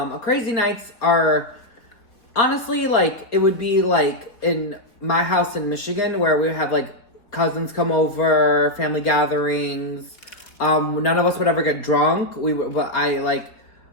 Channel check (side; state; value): right; late; 4.0 ms